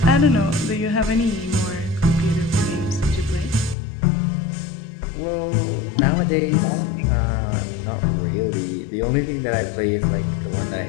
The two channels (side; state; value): right; drops out; at 3.8 s